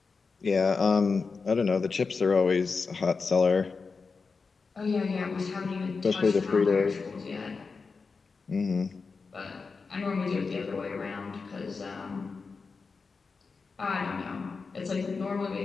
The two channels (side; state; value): right; quieter; 4.7 dB